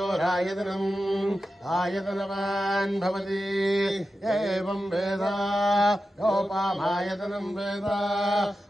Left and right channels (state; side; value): normal; both; correlation 0.92